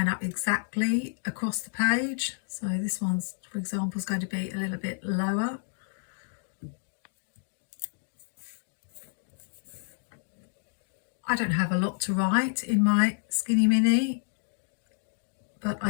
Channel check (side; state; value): right; silent; 58 dB below the other